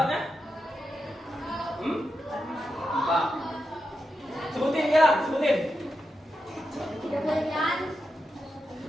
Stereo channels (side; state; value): both; normal; correlation 0.87